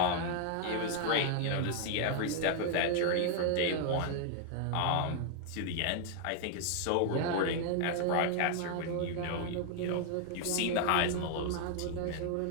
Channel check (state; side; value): different; both; correlation 0.00